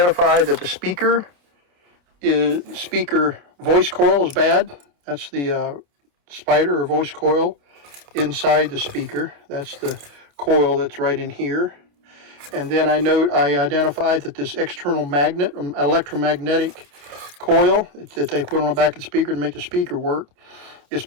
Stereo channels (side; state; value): left; late; 28 ms